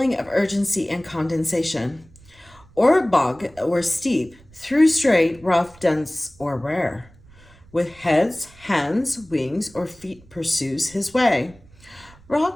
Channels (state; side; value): noise; right; rumble, 25 dB below the sound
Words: of urgency and condensation. Or bog or steep, through straight, rough, dense, or rare. With heads, hands, wings, or feet pursues his way.